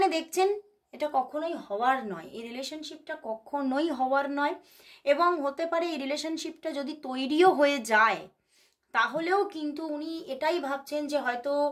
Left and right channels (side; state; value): both; identical; correlation 1.00